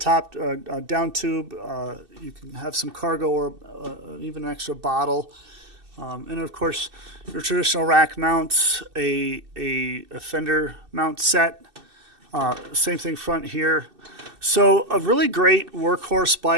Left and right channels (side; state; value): left; late; 2.6 ms